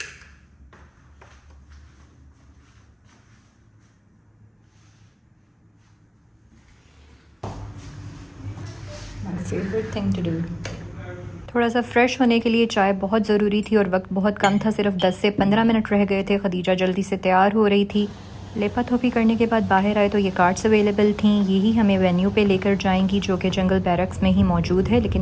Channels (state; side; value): identical; both; correlation 1.00